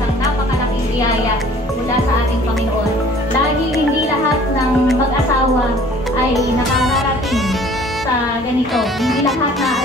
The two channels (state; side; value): normal; both; correlation 0.52